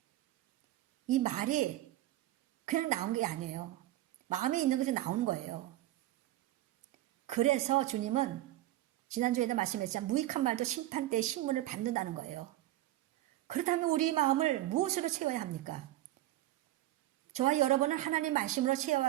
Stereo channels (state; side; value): quieter; left; 15.4 dB